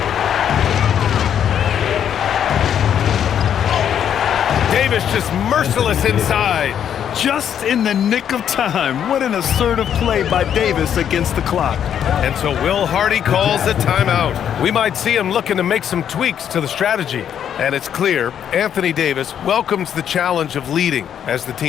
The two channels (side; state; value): right; quieter; 9.1 dB